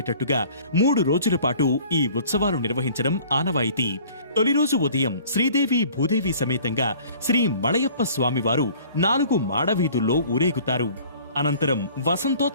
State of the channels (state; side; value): inverted; both; correlation -0.50